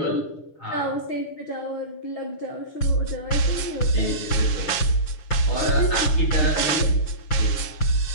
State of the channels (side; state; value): right; late; 6.6 ms